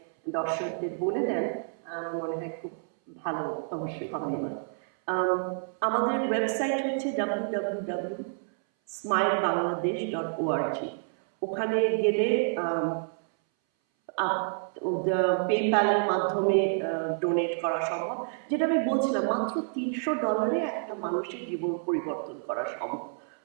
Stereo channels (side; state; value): left; silent; 59 dB below the other